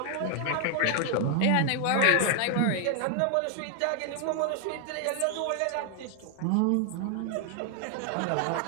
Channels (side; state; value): both; different; correlation 0.00